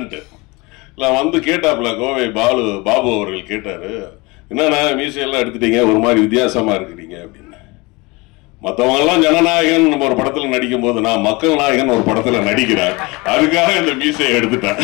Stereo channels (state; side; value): quieter; right; 24.7 dB